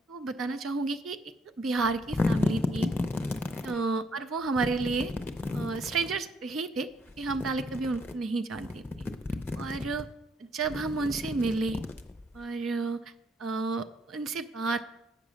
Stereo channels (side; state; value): both; normal; correlation 0.70